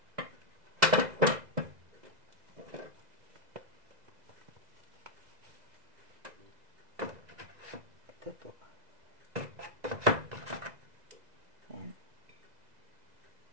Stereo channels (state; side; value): late; left; 2.0 ms